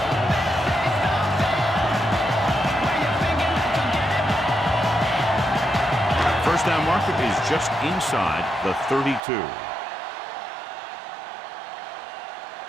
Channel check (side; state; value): left; drops out; at 9.2 s